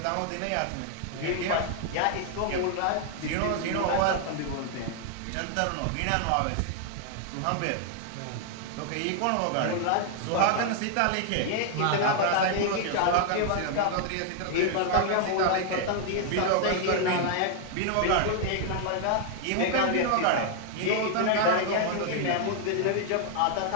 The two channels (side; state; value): both; different; correlation 0.00